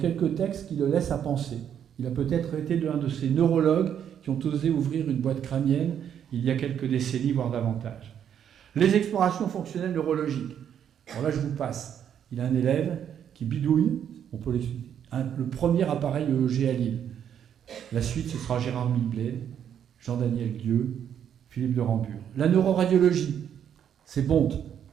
textes qui le laissent à penser. Il a peut-être été l'un de ces neurologues qui ont osé ouvrir une boîte crânienne il y a quelques décennies, voire davantage. Les explorations fonctionnelles neurologiques. Alors là, je vous passe. Il a un élève qui bidouille, on peut l'expliquer, le premier appareil EEG à Lille. La suite, ce sera Gérard Milbled, Jean-Daniel Guieux, Philippe de Rambure. La neuroradiologie, c'est Bonte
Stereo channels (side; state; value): left; quieter; 9.0 dB